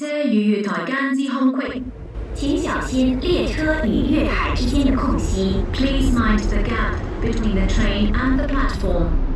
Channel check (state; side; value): identical; both; correlation 1.00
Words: 與月台間之空隙。請小心列車與月台之間的空隙。Please mind the gap between the train and the platform.